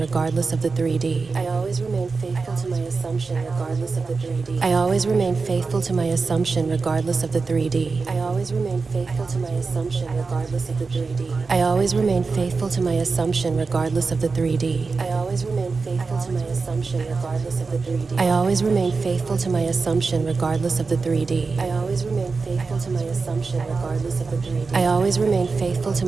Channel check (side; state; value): left; quieter; 4.4 dB